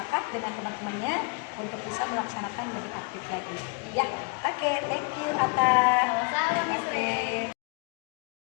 dengan teman-temannya untuk bisa melaksanakan lebih aktif lagi. Ya, oke, thank you Ata. Sama-sama, Miss Oke. Rey.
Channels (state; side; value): quieter; right; 32.9 dB